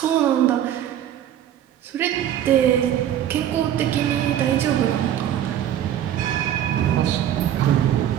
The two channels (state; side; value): quieter; left; 10.9 dB